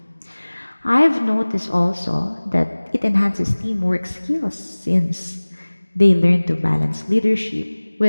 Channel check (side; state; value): both; inverted; correlation -1.00